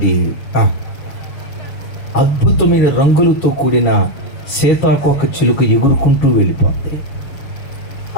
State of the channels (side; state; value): right; late; 7.2 ms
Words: అద్భుతమైన రంగులతో కూడిన సీతాకోక చిలుక ఎగురుకుంటూ వెళ్ళిపోతాయి.